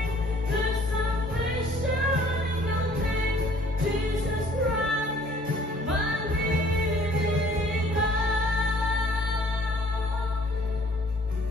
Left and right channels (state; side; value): normal; both; correlation 0.57